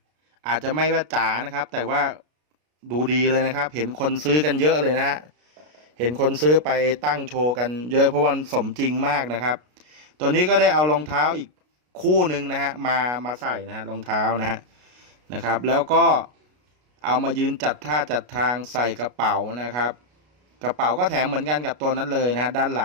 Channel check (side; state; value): left; late; 33 ms